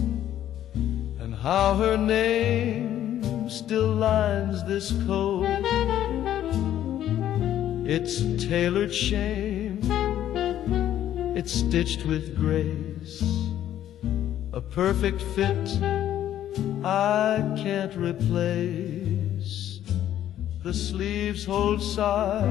and how her name still lines this coat. It's tailored shame, it's stitched with grace, a perfect fit I can't replace. The sleeves hold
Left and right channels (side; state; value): right; quieter; 11.6 dB